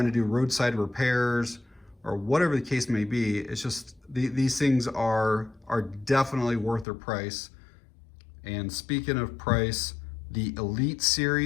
to do roadside repairs or whatever the case may be. It's just, these things are definitely worth their price. And speaking of price, the Elite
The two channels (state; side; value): drops out; right; at 6.9 s